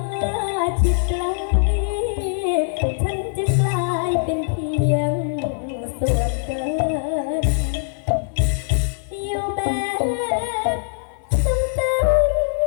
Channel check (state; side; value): silent; right; 59 dB below the other